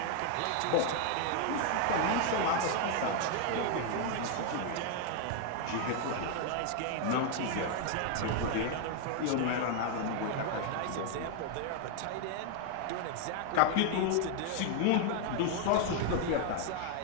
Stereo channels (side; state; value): both; different; correlation 0.00